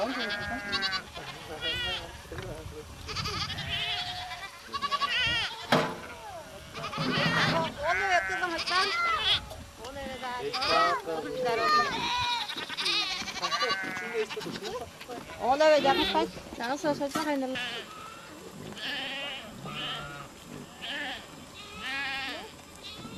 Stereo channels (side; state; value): both; identical; correlation 1.00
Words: Ona ve yakın kaç. Nasıl saçma kaynarlar.